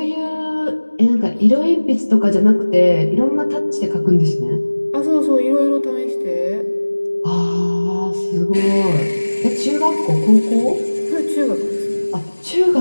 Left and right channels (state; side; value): inverted; both; correlation -1.00